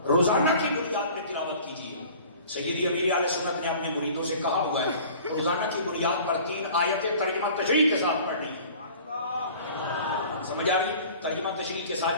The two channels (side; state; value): both; inverted; correlation -0.46